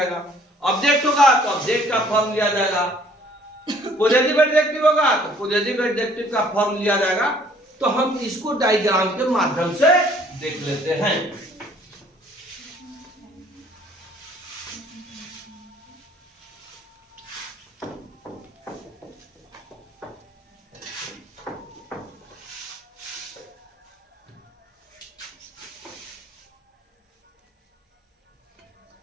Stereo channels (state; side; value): normal; both; correlation 0.58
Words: ऑब्जेक्ट होगा तो ऑब्जेक्ट का फॉर्म लिया जाएगा, पॉजिटिव एडजेक्टिव होगा तो पॉजिटिव एडजेक्टिव का फॉर्म लिया जाएगा। तो हम इसको डायग्राम के माध्यम से देख लेते हैं।